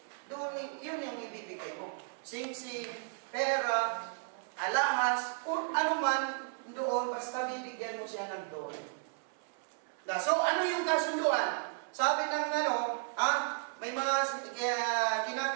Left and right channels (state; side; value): silent; left; 55 dB below the other